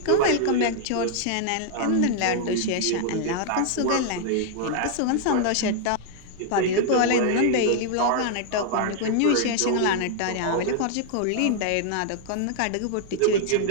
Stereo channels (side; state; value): both; different; correlation -0.01